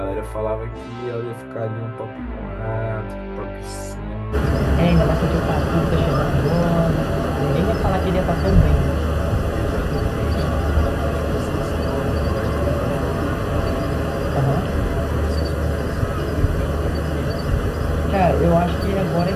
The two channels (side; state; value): both; identical; correlation 1.00